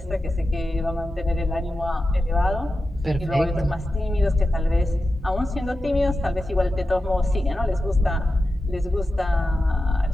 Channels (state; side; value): normal; both; correlation 0.92